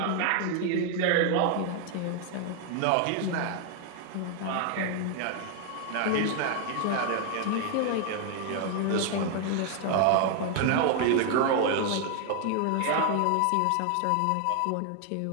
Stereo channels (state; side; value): different; both; correlation 0.00